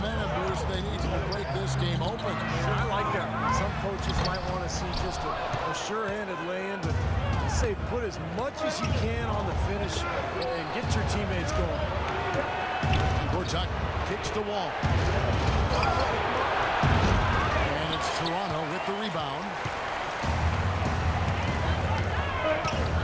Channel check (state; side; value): identical; both; correlation 1.00